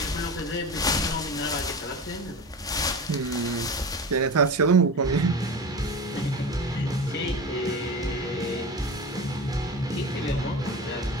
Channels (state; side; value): normal; both; correlation 0.30